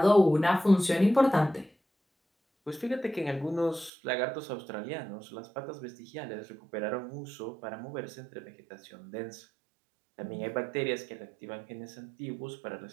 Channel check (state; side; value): drops out; left; at 3.9 s